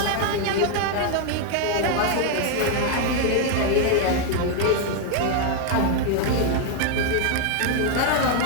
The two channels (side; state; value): both; different; correlation 0.01